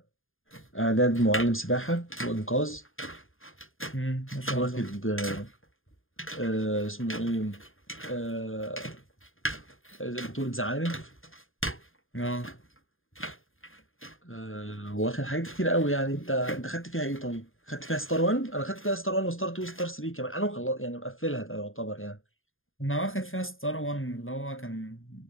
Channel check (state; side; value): late; right; 0.59 ms